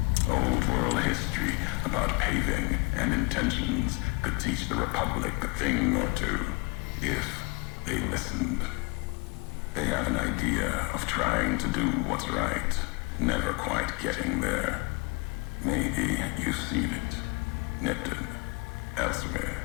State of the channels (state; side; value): quieter; right; 28.8 dB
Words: Old world history about paving and intentions could teach the Republic a thing or two, if they listened. They have an idea of trying to do what's right, never quite getting there. Maybe you've seen it, nipped it, elsewhere.